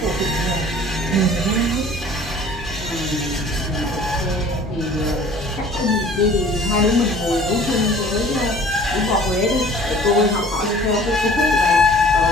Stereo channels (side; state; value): both; normal; correlation 0.49